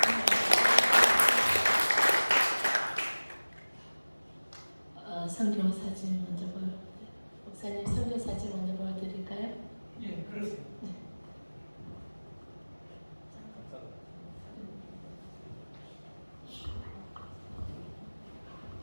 선교 사진 먼저 목사님 선교 사진 먼저 보여드릴까요? 예, 그러세요. 네.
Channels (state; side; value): inverted; both; correlation -1.00